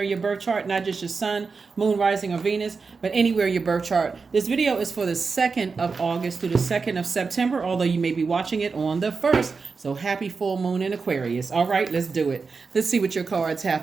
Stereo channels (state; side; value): quieter; left; 4.8 dB